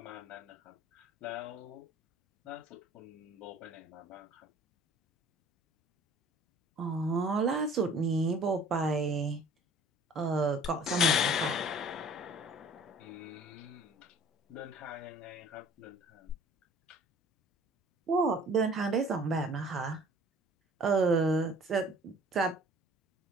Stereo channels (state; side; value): normal; both; correlation 0.51